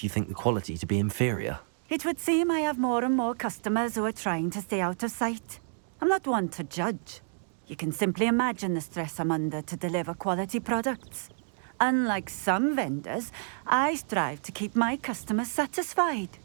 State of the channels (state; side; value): silent; left; digital silence